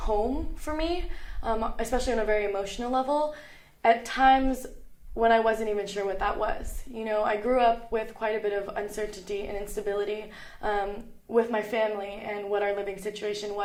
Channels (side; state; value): both; identical; correlation 1.00